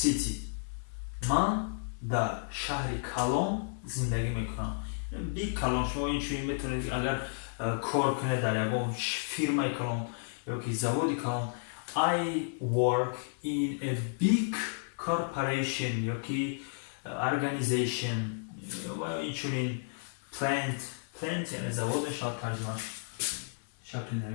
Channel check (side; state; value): right; silent; 56 dB below the other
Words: من در شهر کلان زندگی میکنم. بیگ کلان شما این چیزی میتونید اگر کار کنید در یک فیرمای کلان یا که زوادی کلان. I work in a big corporation یا که organization و اینچنین plant یعنی завод شاید ترجمه شکل